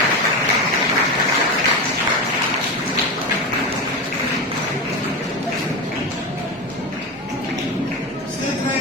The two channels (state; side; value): normal; both; correlation 0.20